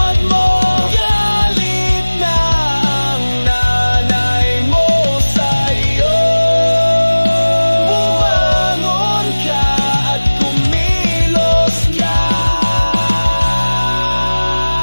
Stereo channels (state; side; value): inverted; both; correlation -1.00